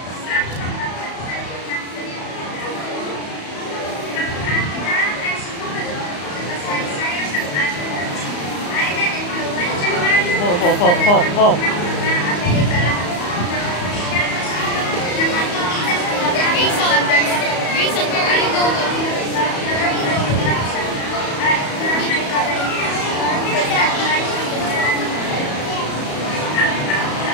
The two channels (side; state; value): right; late; 34 ms